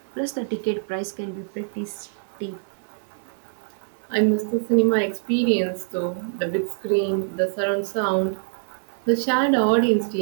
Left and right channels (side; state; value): left; silent; digital silence